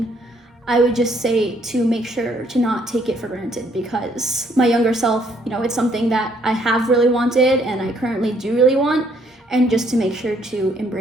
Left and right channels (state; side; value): normal; both; correlation 0.67